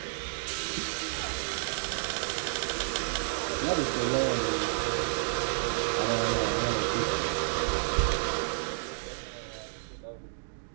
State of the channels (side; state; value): left; silent; digital silence